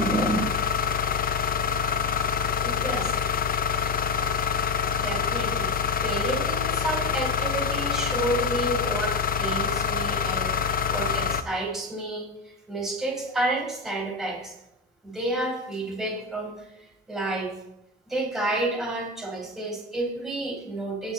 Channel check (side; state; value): right; quieter; 3.3 dB